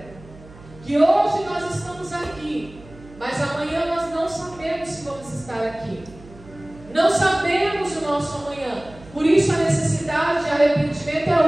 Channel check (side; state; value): right; noise; hum, 21 dB below the sound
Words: Que hoje nós estamos aqui, mas amanhã nós não sabemos se vamos estar aqui. Não sabemos o nosso amanhã. Por isso a necessidade de arrependimento é